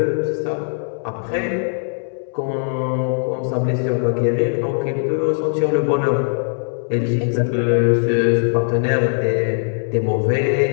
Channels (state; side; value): silent; right; digital silence